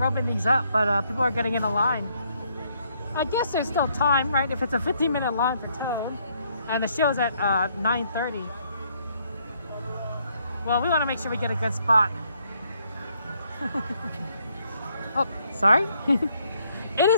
these up, but people are getting in a line. I guess there's still time, right? If it's a 15-minute line for time, and the show's at 9:30. Well, we want to make sure we get a good spot. Oh, sorry. It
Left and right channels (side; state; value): both; inverted; correlation -0.70